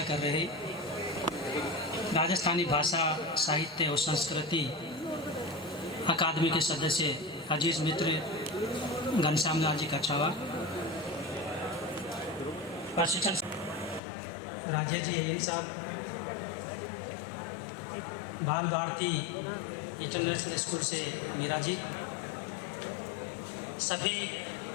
कर रहे राजस्थानी भाषा साहित्य और संस्कृति अकादमी के सदस्य अजीज मित्र घनश्याम लाल जी कछावा, प्रशिक्षण राजेश जी अय्यर साहब, बाल भारती इंटरनेशनल स्कूल से मीरा जी, सभी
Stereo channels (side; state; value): right; drops out; at 14.0 s